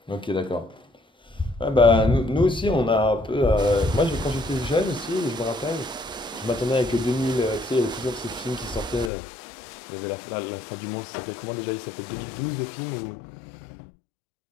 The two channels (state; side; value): drops out; right; at 9.1 s